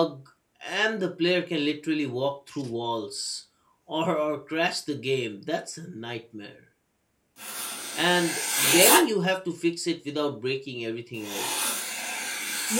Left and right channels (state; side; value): identical; both; correlation 1.00